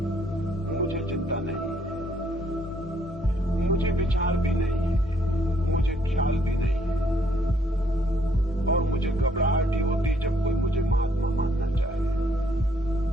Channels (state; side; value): normal; both; correlation 0.68